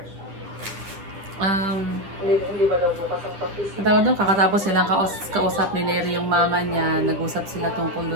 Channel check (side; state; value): left; late; 10 ms